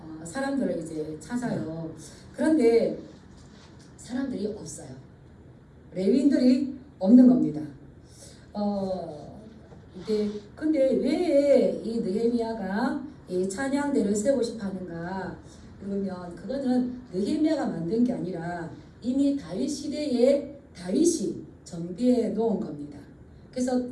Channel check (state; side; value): identical; both; correlation 1.00